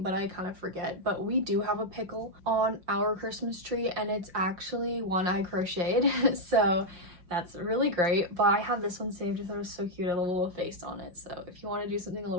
but I kind of forget. But we do have a pickle on our Christmas tree, and it's actually one I crocheted. So that's really great, but I have this one saved because it was so cute. I love a little face on it, so if you want to do something a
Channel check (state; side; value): late; left; 5.7 ms